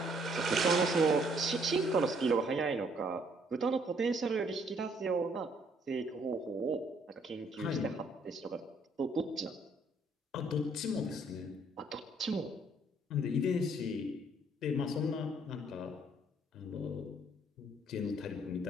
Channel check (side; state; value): both; normal; correlation 0.65